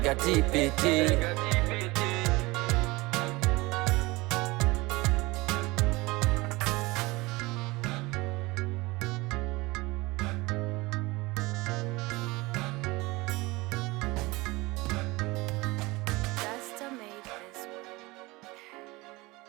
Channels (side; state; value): left; quieter; 22.4 dB